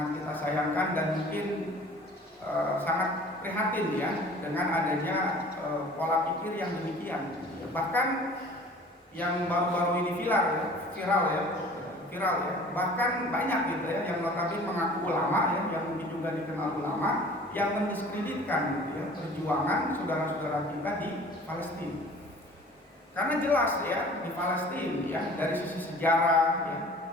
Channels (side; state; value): both; normal; correlation 0.47